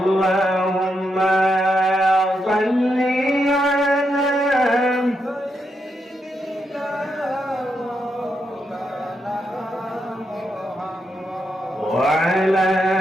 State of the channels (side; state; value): both; normal; correlation 0.82